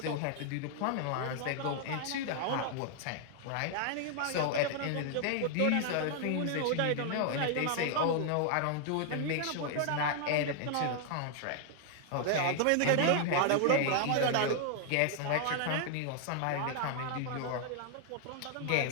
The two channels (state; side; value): different; both; correlation 0.00